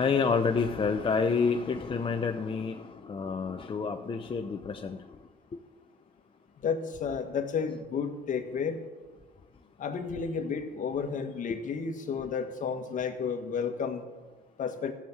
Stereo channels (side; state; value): right; quieter; 5.2 dB